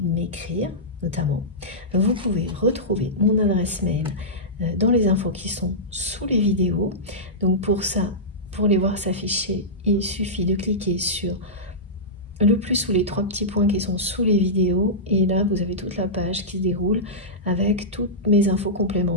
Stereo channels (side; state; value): both; normal; correlation -0.14